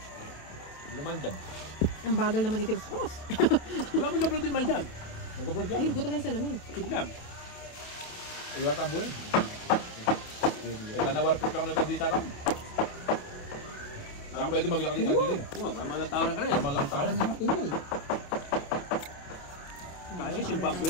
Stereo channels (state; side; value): late; right; 28 ms